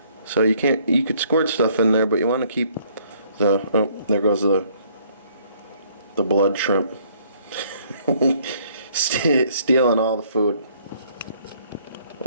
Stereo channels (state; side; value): inverted; both; correlation -0.63